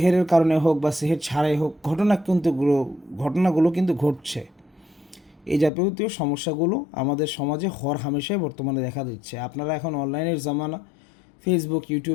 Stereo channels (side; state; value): right; drops out; at 5.7 s